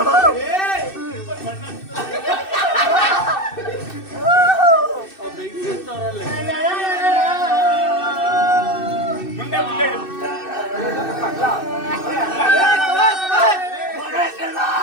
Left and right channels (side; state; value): right; late; 2.6 ms